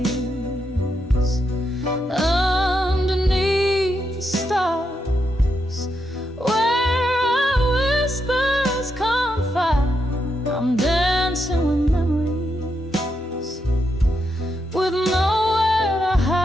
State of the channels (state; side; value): normal; both; correlation 0.82